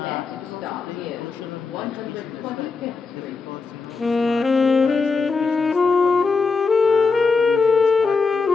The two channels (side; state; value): right; quieter; 4.5 dB